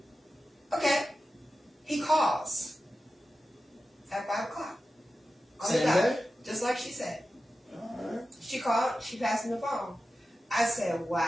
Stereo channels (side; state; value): both; normal; correlation 0.93